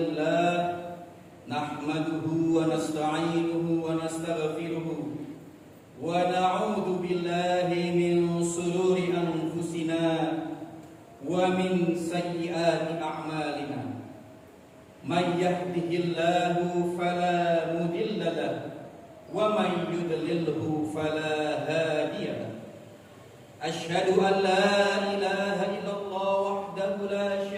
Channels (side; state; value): both; identical; correlation 1.00